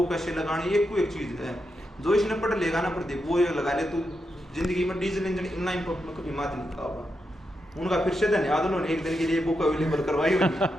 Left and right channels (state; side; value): normal; both; correlation 0.85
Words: कैसे लगाने, एक को एक चीज है। जो इसने पढ़ लेगा ना प्रदीप, वो ये लगा ले तो जिंदगी में डीजल इंजन इनलाइन पंप में कभी मात नहीं खाओगा। उनका फिर से धन्यवाद, उन्होंने एक दिन के लिए बुक अवेलेबल करवाई